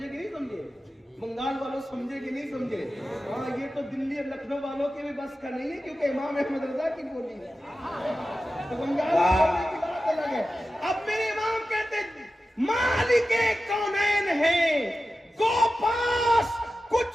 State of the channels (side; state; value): both; normal; correlation 0.93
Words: کہ نہیں سمجھے؟ بنگال والوں سمجھے کہ نہیں سمجھے؟ ہاں, یہ تو دلی اور لکھنؤ والوں کے بھی بس کا نہیں ہے, کیونکہ امام احمد رضا کی بولی ہے. تو بنگال والوں کی بات الگ ہے. اب میرے امام کہتے ہیں مالک کونین ہے, کو پاس